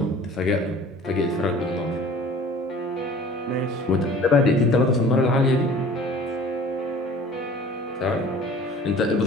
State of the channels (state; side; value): normal; both; correlation 0.46